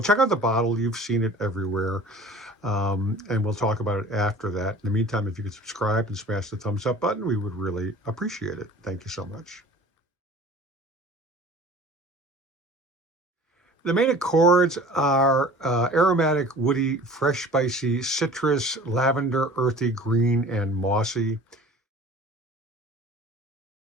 check out the bottle. You've seen it everywhere. And we'll talk about it after that. In the meantime, if you could subscribe and smash the thumbs up button, we would really appreciate it. Thank you so much. The main accords are aromatic, woody, fresh, spicy, citrus, lavender, earthy, green, and mossy.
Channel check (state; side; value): normal; both; correlation 0.44